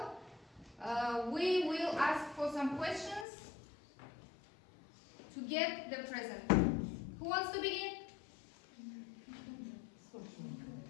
we will ask for some questions to get the present. Who wants to begin?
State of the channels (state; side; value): drops out; right; at 3.2 s